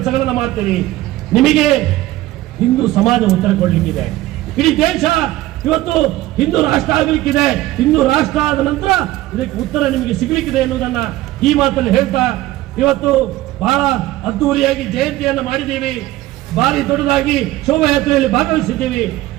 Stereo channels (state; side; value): quieter; left; 16.4 dB